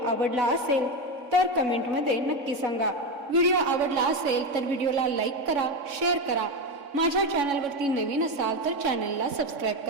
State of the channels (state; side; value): late; left; 3.6 ms